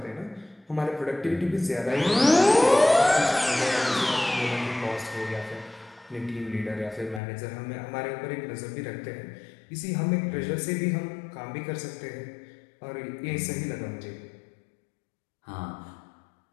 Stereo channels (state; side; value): drops out; right; at 7.2 s